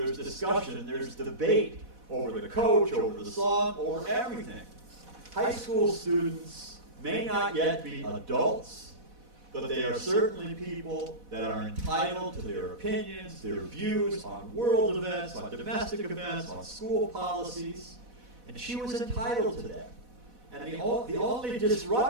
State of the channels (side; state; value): left; late; 4.1 ms